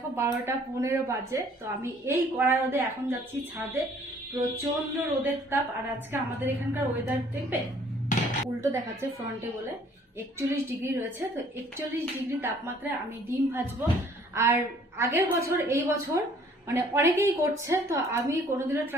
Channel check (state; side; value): normal; both; correlation 0.58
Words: 12টা 15 বাজে। তো আমি এই কড়া রোদে এখন যাচ্ছি ছাদে। প্রচন্ড রোদের তাপ। আর আজকে আমাদের এখানকার ওয়েদার দেখবে উল্টো দেখাচ্ছে ফ্রন্টে বলে 41 ডিগ্রি রয়েছে। তো 41 ডিগ্রি তাপমাত্রায় আমি ডিম ভাজবো। আর আগের বছর এই বছর মানে অনেকেই করছে, তো আমি কোনোদিনও